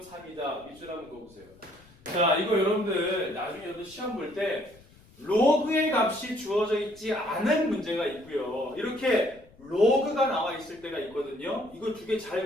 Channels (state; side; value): noise; left; rumble, 26 dB below the sound